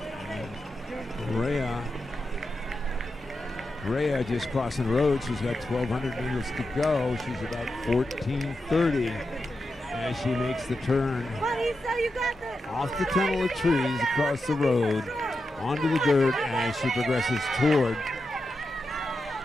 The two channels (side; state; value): both; normal; correlation 0.88